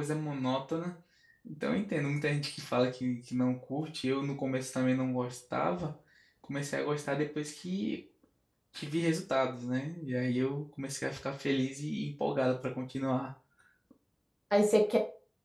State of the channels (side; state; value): both; identical; correlation 1.00